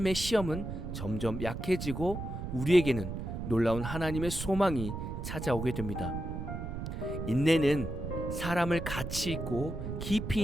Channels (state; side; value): noise; right; rumble, 6 dB below the sound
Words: 시험은 점점 약해지고 우리에게는 놀라운 하나님의 소망이 찾아오게 됩니다. 인내는 사람을 가치 있고 깊이